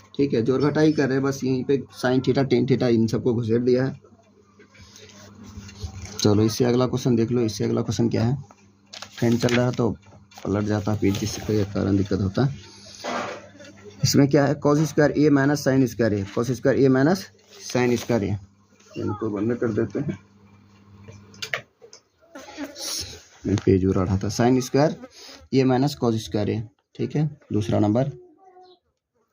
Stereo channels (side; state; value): both; identical; correlation 1.00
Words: ठीक है, जोड़ घटा ही कर रहे हैं, बस यहीं पे sine theta tan theta in सबको घुसेड़ दिया है। चलो इससे अगला क्वेश्चन देख लो। इससे अगला क्वेश्चन क्या है, फैन चल रहा है तो पलट जाता है पेज, जिसके कारण दिक्कत होता है। इसमें क्या है कॉस स्क्वायर ए माइनस साइन स्क्वायर ए, कॉस स्क्वायर ए माइनस साइन स्क्वायर ए, इनको बंद कर देते हैं, मैं पेज उड़ा रहा था। साइन स्क्वायर ए माइनस कॉस स्क्वायर ए। ठीक है, दूसरा नंबर